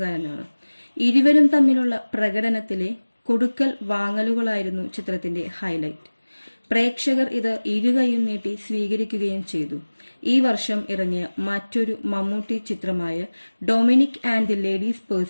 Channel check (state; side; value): inverted; both; correlation -1.00